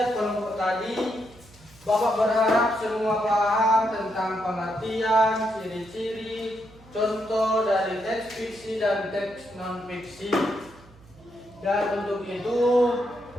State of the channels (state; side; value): noise; right; hum, 25 dB below the sound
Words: kelompok tadi, Bapak berharap semua paham tentang pengertian, ciri-ciri, contoh dari teks fiksi dan teks non fiksi. Dan untuk itu